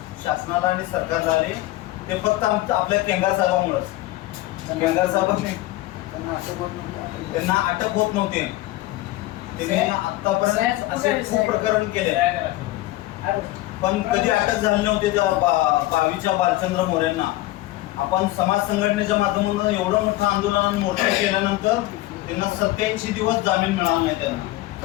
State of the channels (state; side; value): quieter; right; 17.3 dB